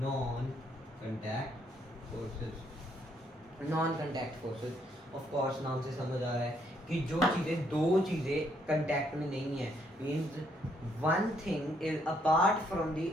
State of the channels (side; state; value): both; normal; correlation 0.71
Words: Non contact forces, non contact forces of course नाम से समझ आ रहा है कि जो चीज़ें, दो चीज़ें कांटेक्ट में नहीं है, means one thing is apart from the